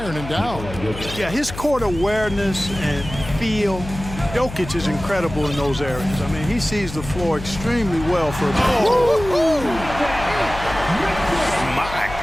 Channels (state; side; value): noise; left; hum, 11 dB below the sound